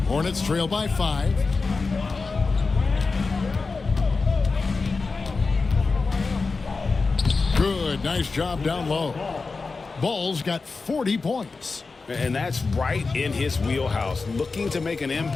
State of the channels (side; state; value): right; quieter; 4.2 dB